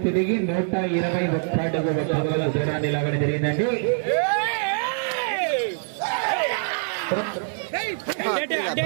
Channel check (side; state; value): left; silent; 57 dB below the other